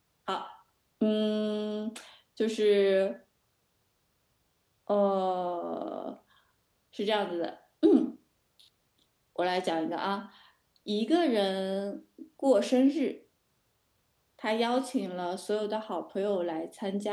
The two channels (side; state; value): both; identical; correlation 1.00